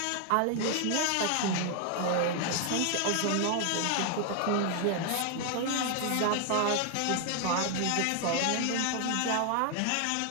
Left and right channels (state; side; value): different; both; correlation 0.00